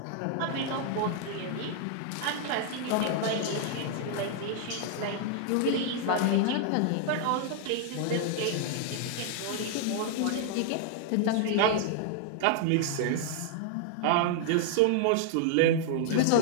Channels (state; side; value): different; both; correlation 0.00